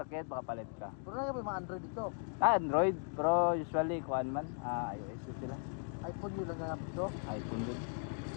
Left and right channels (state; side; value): silent; right; 53 dB below the other